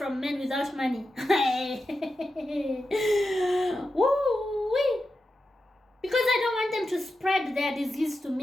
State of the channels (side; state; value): both; normal; correlation 0.90